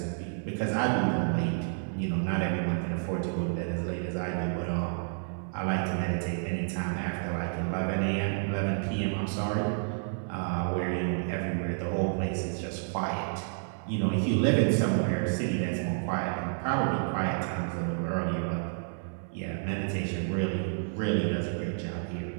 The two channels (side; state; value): left; silent; 56 dB below the other